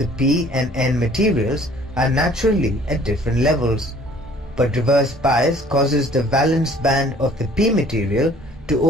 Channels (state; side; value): normal; both; correlation 0.55